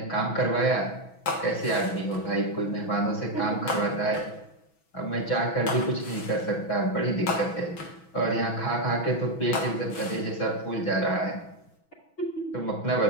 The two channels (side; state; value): right; late; 6.1 ms